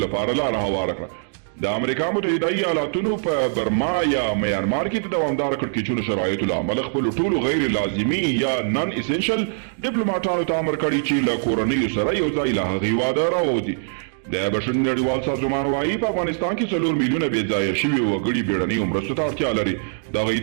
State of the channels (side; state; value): left; silent; digital silence